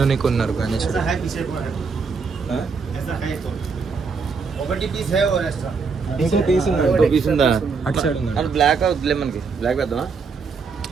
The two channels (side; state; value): left; quieter; 5.1 dB